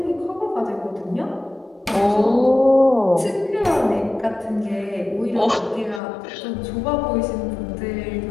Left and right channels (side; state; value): right; drops out; at 6.0 s